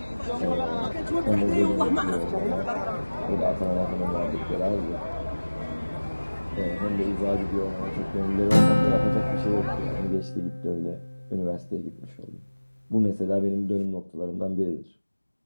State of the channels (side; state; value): both; inverted; correlation -1.00